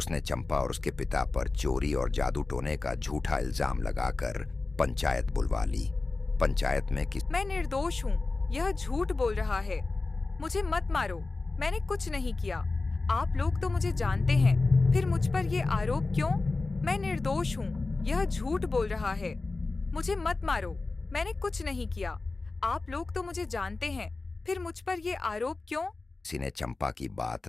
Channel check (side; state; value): right; quieter; 3.5 dB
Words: चंपा और उसके पिता पर चोरी और जादू टोने का झूठा इल्जाम लगाकर पंचायत बुलवा ली। पंचायत में मैं निर्दोष हूँ, यह झूठ बोल रहा है। मुझे मत मारो, मैंने कुछ नहीं किया। आप लोग तो मुझे जानते हैं, फिर मुझ पर ये आरोप क्यों? मैं निर्दोष हूँ, यह झूठ बोल रहा है। मुझे मत मारो, मैंने कुछ नहीं किया। आप लोग तो मुझे जानते हैं, फिर मुझ पर ये आरोप क्यों? किसी ने चंपा की